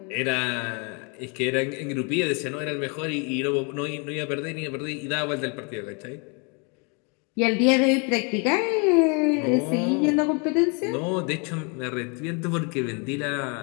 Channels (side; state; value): right; quieter; 34.1 dB